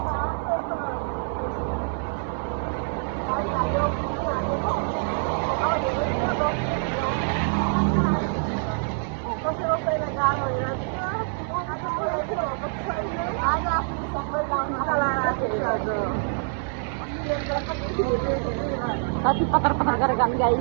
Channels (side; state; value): left; silent; 61 dB below the other